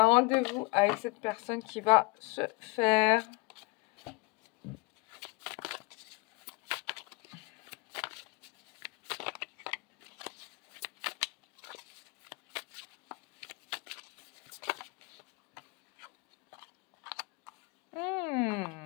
un rendez-vous avec cette personne qui va se faire.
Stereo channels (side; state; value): right; quieter; 24.6 dB